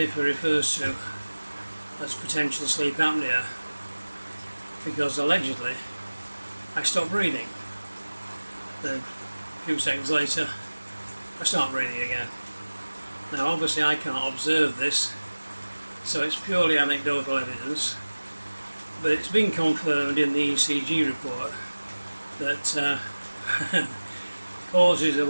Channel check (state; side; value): inverted; both; correlation -1.00